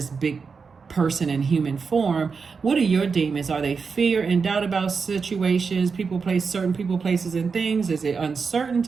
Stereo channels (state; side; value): quieter; left; 5.2 dB